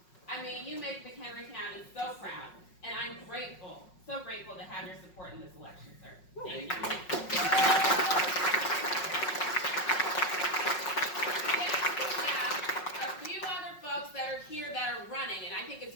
I mean, you make McHenry County so proud, and I'm grateful, so grateful to have your support in this election, sir. Thank you. A few other folks that are here that are running, and I think it's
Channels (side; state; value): right; late; 5.4 ms